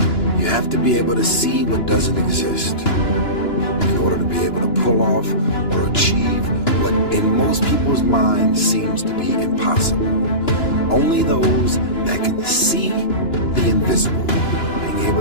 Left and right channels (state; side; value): late; right; 2.9 ms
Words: You have to be able to see what doesn't exist in order to be able to pull off or achieve what in most people's minds seems to be impossible. Only those that can see the invisible, being able